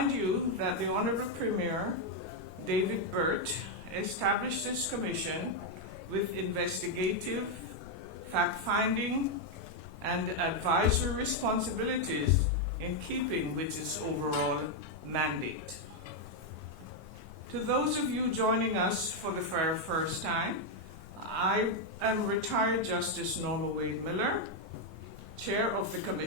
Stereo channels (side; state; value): both; normal; correlation 0.01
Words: you that the Honorable Premier, David Burt, established this commission with investigative, fact-finding, and advisory responsibilities in keeping with its overall mandate. To those of you joining us for the very first time, I am retired Justice Norma Wade Miller, Chair of the